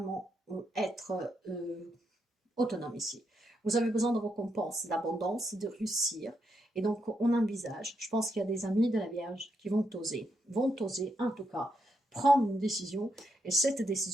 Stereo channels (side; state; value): both; normal; correlation 0.81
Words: être autonome ici. Vous avez besoin de récompenses, d'abondance, de réussir. Et donc, on envisage, je pense qu'il y a des amis de la Vierge qui vont oser en tout cas prendre une décision. Et cette